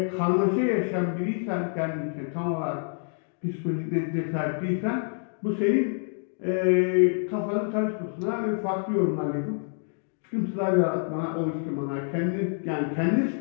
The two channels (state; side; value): silent; right; digital silence